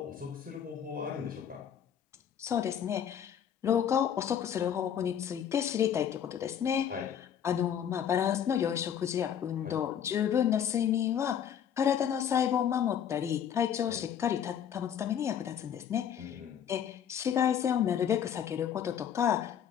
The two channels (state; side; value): quieter; right; 9.0 dB